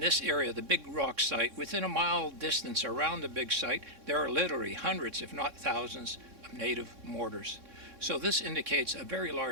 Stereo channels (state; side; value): late; left; 3.6 ms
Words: area, the Big Rock site, within a mile distance around the big site, there are literally hundreds if not thousands of native mortars. So this indicates a very